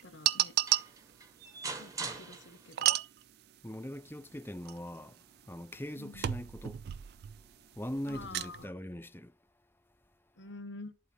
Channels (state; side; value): quieter; left; 7.9 dB